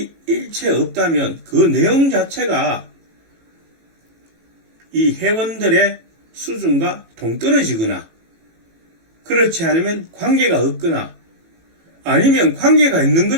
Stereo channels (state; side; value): late; left; 18 ms